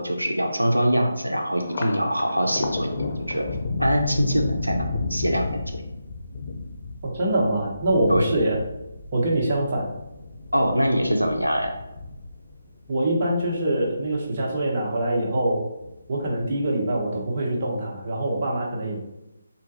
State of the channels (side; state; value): both; inverted; correlation -0.85